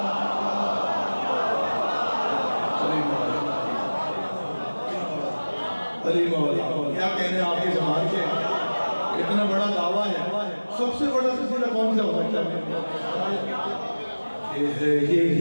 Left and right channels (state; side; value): inverted; both; correlation -1.00